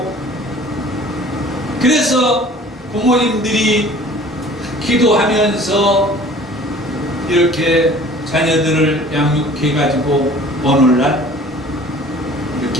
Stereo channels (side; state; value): both; normal; correlation 0.48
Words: 그래서 부모님들이 기도하면서 이렇게 자녀들을 양육해가지고 오늘날